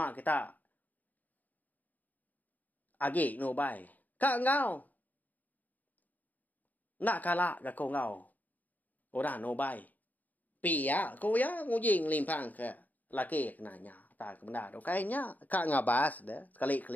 kita agi no bai. Ka ngau. Nak kala ga ko ngau. Ora no bai. Pia ko ya ngujing limpang ke laki kenanya. Ta ke benda do kayaknya ka ngabas dah.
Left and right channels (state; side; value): late; right; 0.081 ms